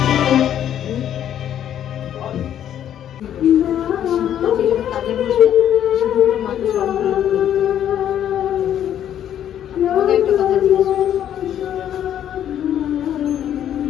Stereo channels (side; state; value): right; quieter; 10.4 dB